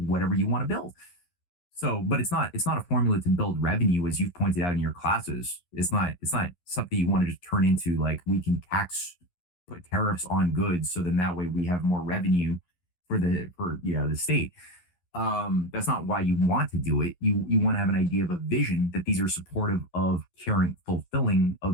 you want to build. So, but it's not a formula to build revenue, as you've pointed out in your classes. It's not something you want to just turn into, like, we can put tariffs on goods, so then that way we have more revenue for the state. That's not why you want to do it. You want to have an idea of a vision, that these are supportive of caring, fulfilling a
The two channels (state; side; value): late; right; 11 ms